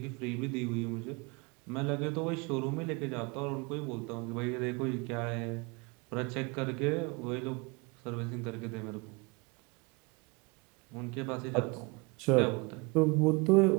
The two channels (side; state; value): left; quieter; 27.5 dB